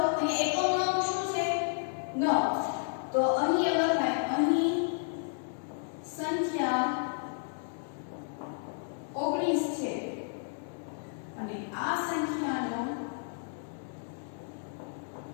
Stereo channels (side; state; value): right; silent; digital silence